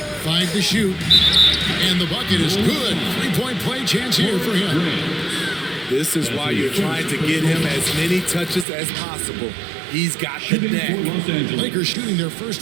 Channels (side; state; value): left; drops out; at 8.7 s